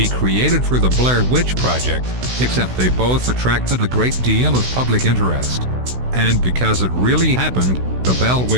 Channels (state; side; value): late; left; 16 ms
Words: created for the Blair Witch Project, except they both attracted a great deal of public interest. And because it really happened, the Bell